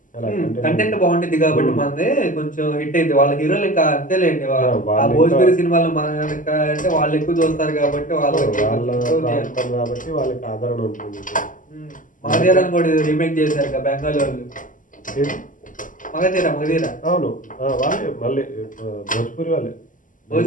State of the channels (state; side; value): late; right; 0.38 ms